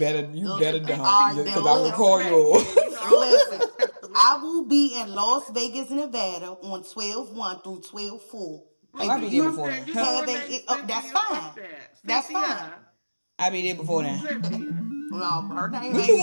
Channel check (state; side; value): inverted; both; correlation -1.00